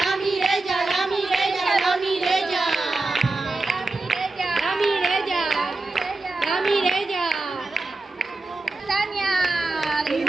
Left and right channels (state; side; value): quieter; left; 3.2 dB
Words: Mireya, la Mireya, la Mireya. La Mireya, la Mireya. Tania,